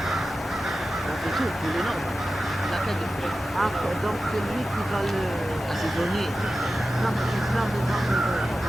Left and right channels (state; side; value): normal; both; correlation 0.94